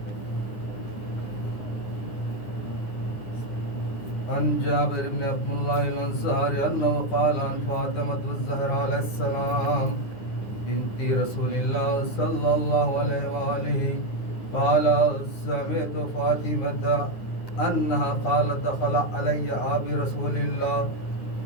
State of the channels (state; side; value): late; right; 9.8 ms